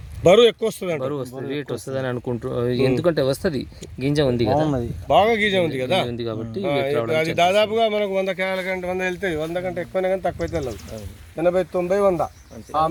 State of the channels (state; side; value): identical; both; correlation 1.00